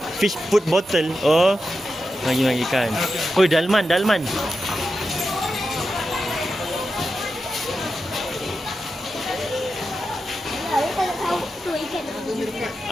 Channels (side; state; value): both; normal; correlation 0.90